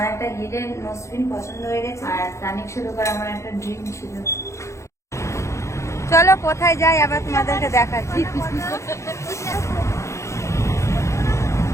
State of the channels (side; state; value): right; late; 0.14 ms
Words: একটা হিডেন নোজপিন পছন্দ হয়ে গেছে, আর তানিশার উপর আমার একটা ড্রিম ছিল। চলো কোথায় যাই আবার তোমাদেরকে দেখাচ্ছি।